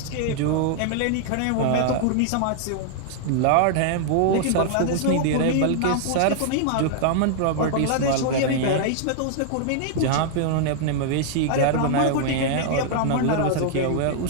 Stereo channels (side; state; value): both; different; correlation 0.00